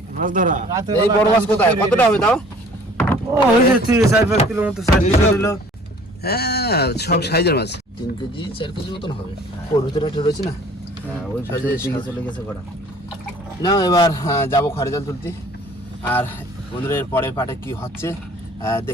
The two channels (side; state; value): both; normal; correlation 0.52